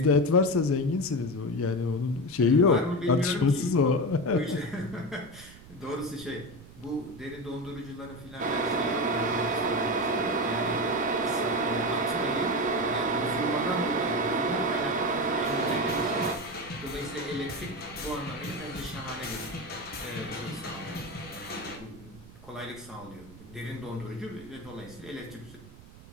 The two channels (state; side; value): noise; right; rumble, 19 dB below the sound